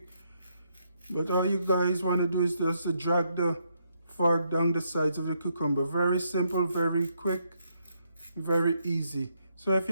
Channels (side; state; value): both; inverted; correlation -0.77